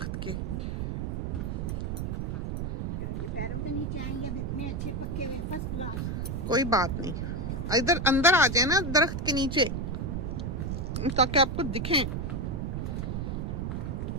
के। ये पैरों के नीचे आएंगे, अब इतने अच्छे पक्के हुए, फर्स्ट क्लास। कोई बात नहीं, इधर अंदर आ जाए ना दरख्त के नीचे, ताकि आपको दिखें।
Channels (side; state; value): right; noise; rumble, 2 dB below the sound